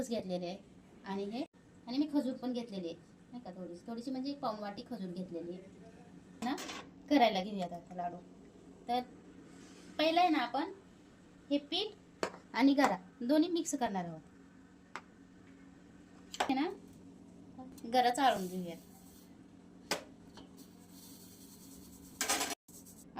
घेतलेले आहे. आणि मी खजूर पण घेतलेली आहे नाही का, थोडीशी म्हणजे एक पाऊण वाटी खजूर घेतलेली आहे ना. करायला घेऊयात आता लाडू. तर पहिलं आहे ना, आपण हे पीठ आणि गरा दोन्ही मिक्स करणार आहोत है ना. गरा चाळून घेऊयात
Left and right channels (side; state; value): both; identical; correlation 1.00